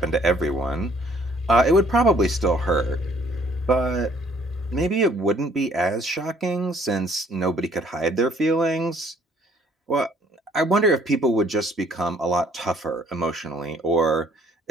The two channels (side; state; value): both; normal; correlation 0.61